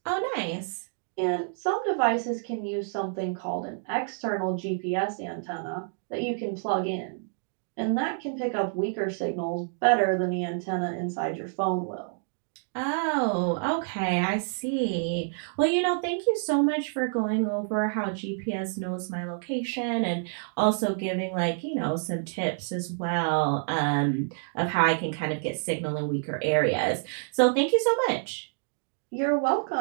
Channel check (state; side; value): silent; left; digital silence